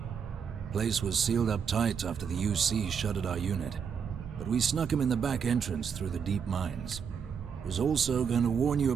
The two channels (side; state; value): left; quieter; 6.9 dB